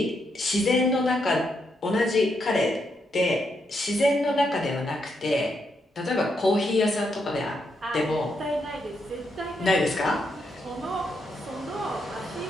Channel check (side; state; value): both; normal; correlation 0.80